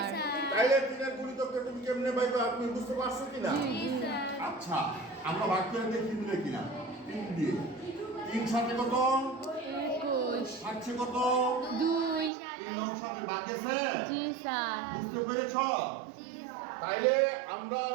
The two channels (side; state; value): left; drops out; at 12.3 s